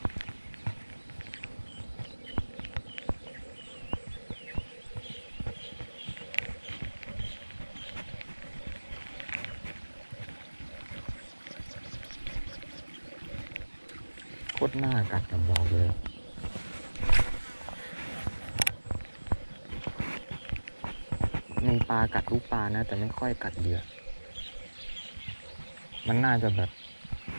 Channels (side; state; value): both; inverted; correlation -1.00